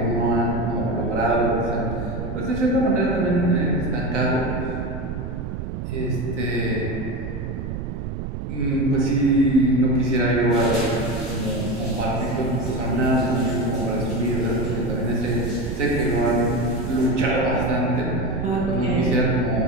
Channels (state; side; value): noise; right; rumble, 6 dB below the sound